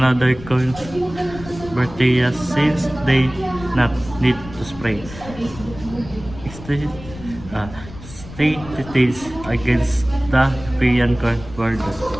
corn bacteria since they not need to spray. State details against the European corn border.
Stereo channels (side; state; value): left; noise; rumble, 15 dB below the sound